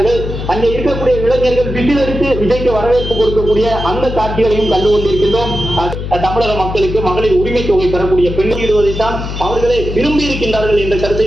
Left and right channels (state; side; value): noise; left; hum, 6 dB below the sound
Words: அங்கே இருக்கக்கூடிய இளைஞர்கள் விசிலடித்து விஜய்க்கு வரவேற்பு கொடுக்கக்கூடிய அந்த காட்சிகளையும் கண்டு கொண்டிருக்கின்றோம். தமிழக மக்களுக்கு மகளிர் உரிமை தொகை பெறக்கூடிய பெண்ணிடுவதைத்தான் அவர்களே விரும்பி இருக்கின்றார்கள் என்ற கருத்தை